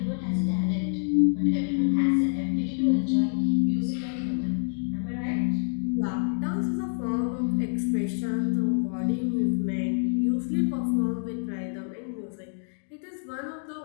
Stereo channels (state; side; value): silent; right; 60 dB below the other